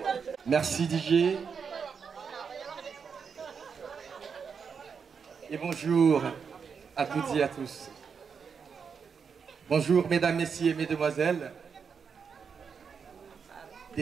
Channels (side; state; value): left; quieter; 6.2 dB